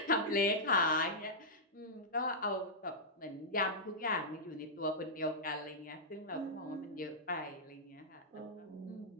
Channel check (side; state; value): both; normal; correlation -0.10